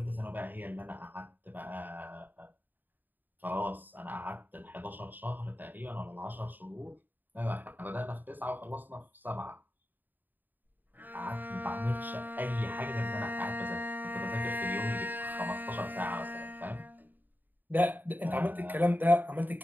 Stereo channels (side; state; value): left; late; 0.089 ms